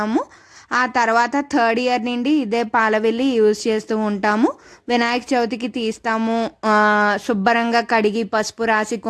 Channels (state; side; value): identical; both; correlation 1.00